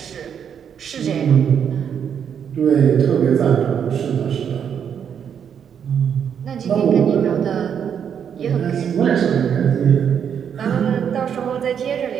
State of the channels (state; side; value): quieter; left; 8.0 dB